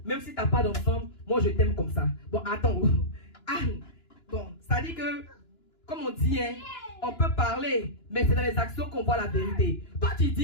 même si t'as pas d'enfant, moi je t'aime comme ça. Bon, attends, Anne, bon, ça dit que comme on dit, hein, on peut parler, mais c'est dans les actions qu'on voit la vérité. Toi, tu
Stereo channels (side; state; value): right; late; 2.9 ms